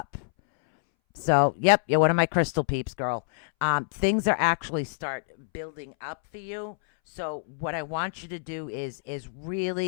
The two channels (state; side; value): silent; right; 60 dB below the other